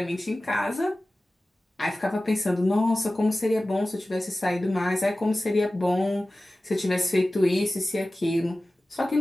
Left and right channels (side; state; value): both; normal; correlation 0.96